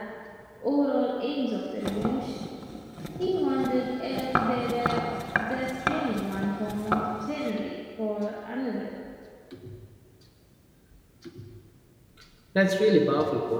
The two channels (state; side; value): identical; both; correlation 1.00